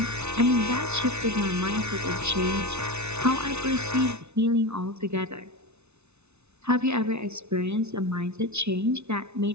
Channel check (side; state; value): left; late; 0.81 ms